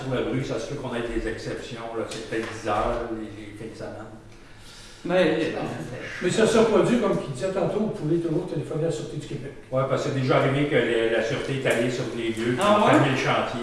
le bruit. Ça se peut qu'on ait des exceptions. Là. C'est peut-être 10 heures, les fins de semaine. Mais Mais ça se produit, comme il disait tantôt, vous pouvez toujours téléphoner à la Sûreté du Québec. Oui, parce que c'est déjà arrivé que la sûreté est allée sur les lieux, Ah pour ouais? fermer le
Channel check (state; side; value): identical; both; correlation 1.00